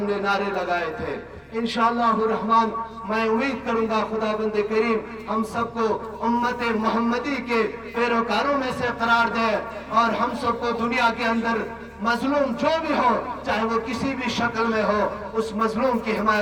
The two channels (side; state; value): both; identical; correlation 1.00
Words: نے نعرے لگائے تھے. انشاءاللہ الرحمن میں امید کروں گا خدا بند کریم ہم سب کو امت محمدی کے پیروکاروں میں سے قرار دے، اور ہم سب کو دنیا کے اندر مظلوم جو بھی ہو، چاہے وہ کسی بھی شکل میں ہو، اس مظلوم کی